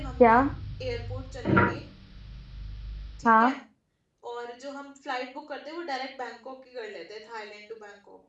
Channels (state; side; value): identical; both; correlation 1.00